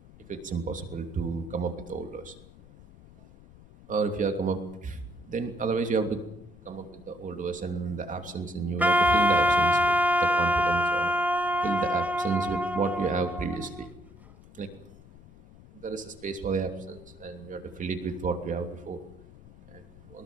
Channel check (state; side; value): noise; left; rumble, 21 dB below the sound